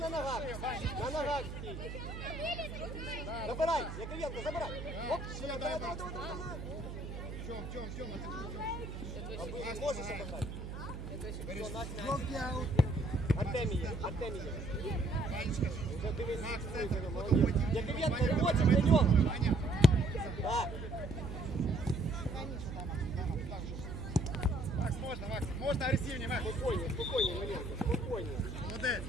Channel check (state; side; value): noise; right; hum, 8 dB below the sound